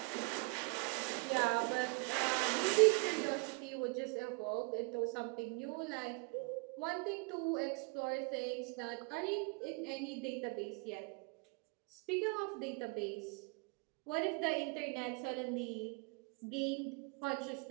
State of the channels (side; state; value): left; quieter; 31.0 dB